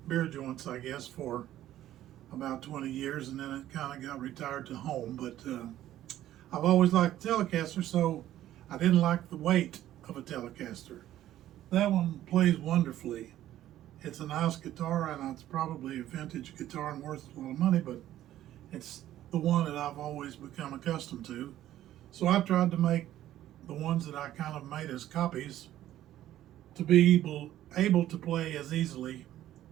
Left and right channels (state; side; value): quieter; left; 13.0 dB